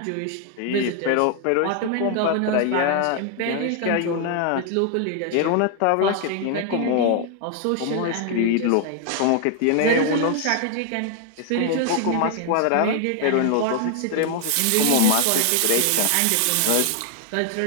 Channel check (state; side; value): different; both; correlation 0.00